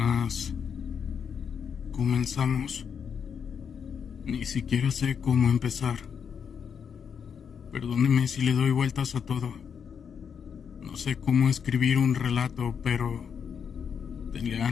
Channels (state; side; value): quieter; right; 7.1 dB